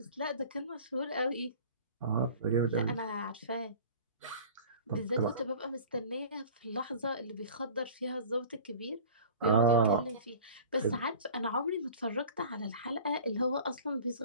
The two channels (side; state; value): both; inverted; correlation -0.42